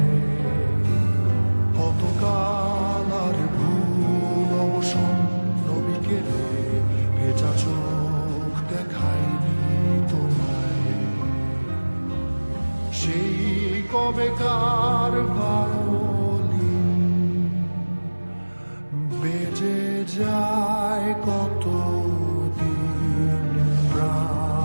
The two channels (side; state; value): both; inverted; correlation -1.00